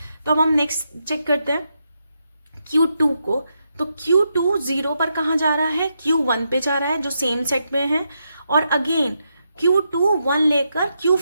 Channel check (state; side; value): inverted; both; correlation -0.83